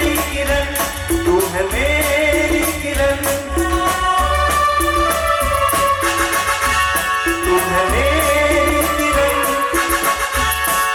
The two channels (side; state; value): both; identical; correlation 1.00